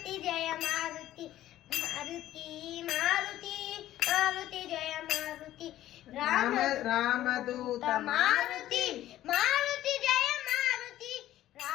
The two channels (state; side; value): quieter; right; 13.6 dB